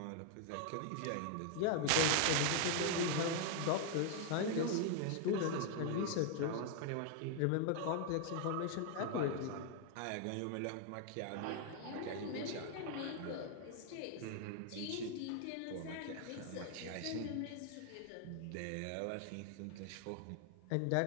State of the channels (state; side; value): different; both; correlation 0.00